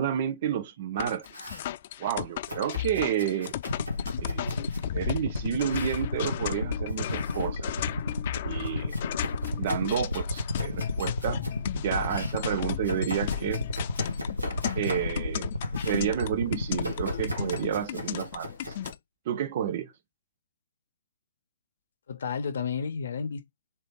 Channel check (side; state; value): both; inverted; correlation -0.54